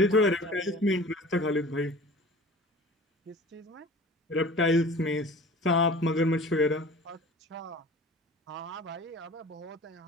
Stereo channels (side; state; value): both; normal; correlation 0.42